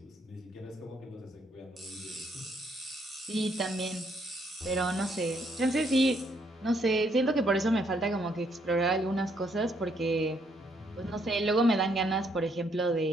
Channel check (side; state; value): both; normal; correlation 0.71